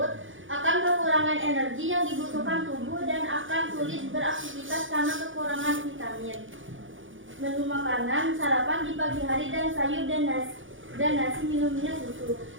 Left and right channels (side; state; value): left; late; 0.57 ms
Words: Akan kekurangan energi yang dibutuhkan tubuh dan akan sulit beraktivitas karena kekurangan vitamin. Menu makanan sarapan di pagi hari dan sayur dan nasi minumnya susu.